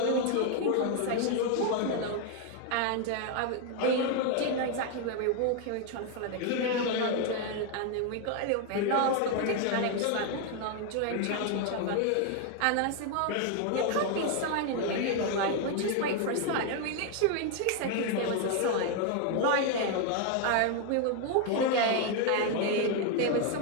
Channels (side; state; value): both; different; correlation 0.01